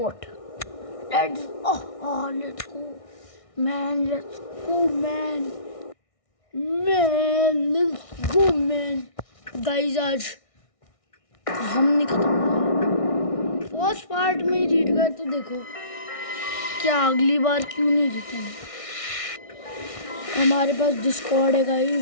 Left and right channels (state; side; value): late; right; 1.6 ms